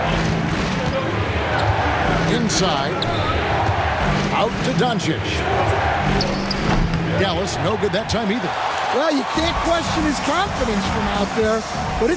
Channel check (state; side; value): identical; both; correlation 1.00